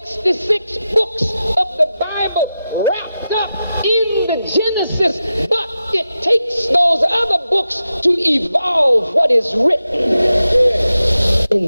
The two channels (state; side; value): inverted; both; correlation -0.91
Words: books of the Bible wrapped up in the Genesis, but it takes those other books to evolve what is written